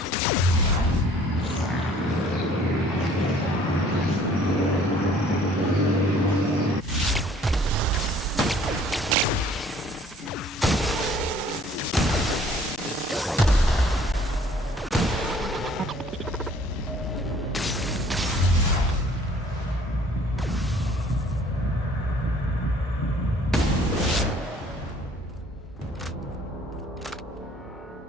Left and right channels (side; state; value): both; normal; correlation 0.56